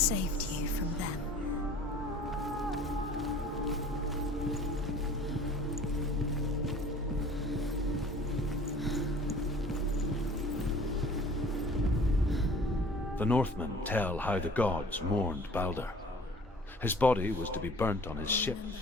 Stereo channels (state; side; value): normal; both; correlation 0.48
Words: you from them. The Northmen tell how the gods mourned Baldur. His body was to be burnt on his ship,